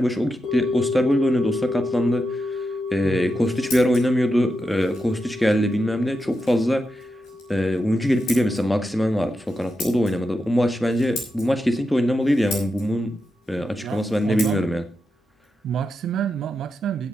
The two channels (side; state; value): both; normal; correlation 0.87